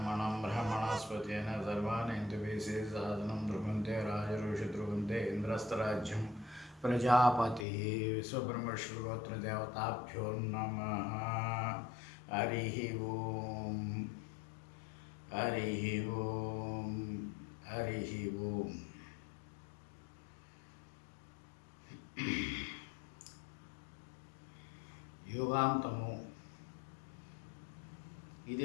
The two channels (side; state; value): right; drops out; at 7.7 s